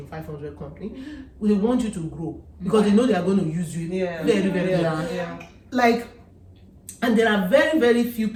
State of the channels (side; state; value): both; identical; correlation 1.00